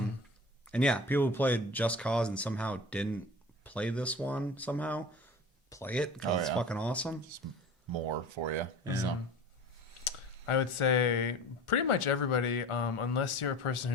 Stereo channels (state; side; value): normal; both; correlation 0.38